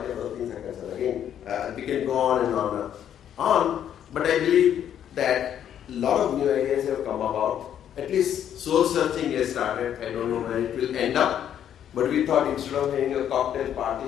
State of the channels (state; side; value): quieter; right; 9.8 dB